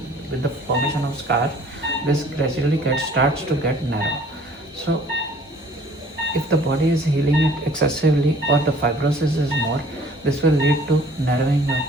with the formation of scar, this gradually starts to get narrow. So if the body is healing it excessively or the fibrosis is more, this will lead to narrowing of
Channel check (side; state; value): both; normal; correlation 0.53